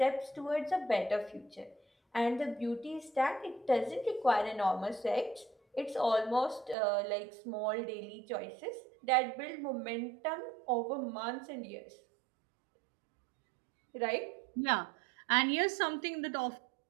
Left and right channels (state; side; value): drops out; left; at 6.8 s